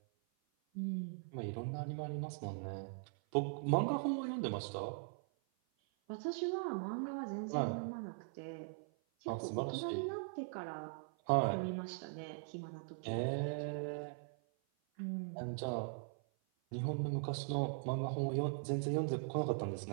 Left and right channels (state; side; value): silent; left; 51 dB below the other